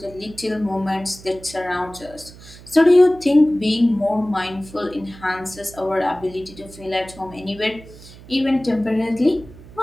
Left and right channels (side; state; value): right; noise; hum, 19 dB below the sound